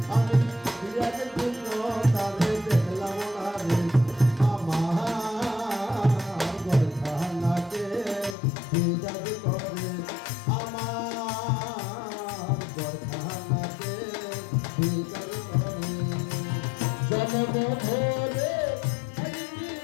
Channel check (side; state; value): right; drops out; at 8.3 s